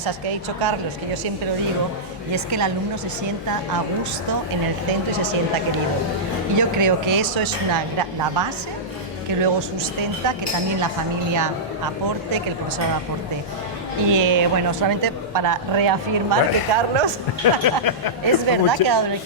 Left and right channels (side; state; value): both; normal; correlation -0.13